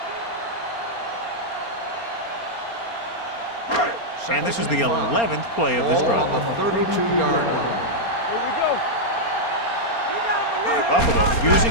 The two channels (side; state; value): right; late; 4.3 ms